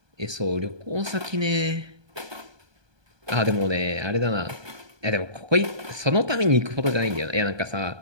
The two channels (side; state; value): left; late; 1.2 ms